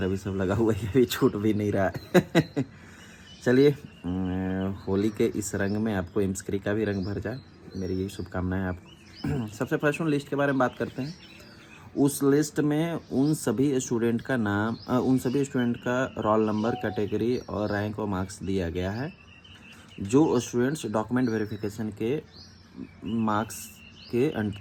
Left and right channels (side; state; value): both; identical; correlation 1.00